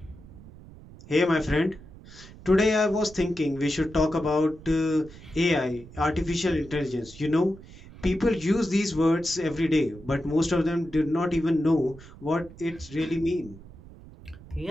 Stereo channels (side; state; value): right; noise; rumble, 19 dB below the sound